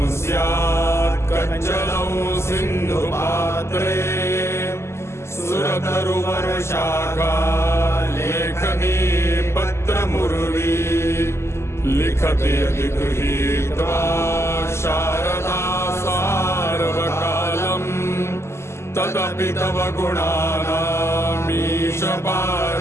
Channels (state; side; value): late; right; 0.13 ms